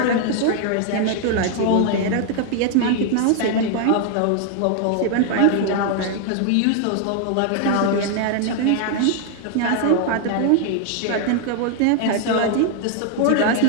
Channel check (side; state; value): both; different; correlation 0.00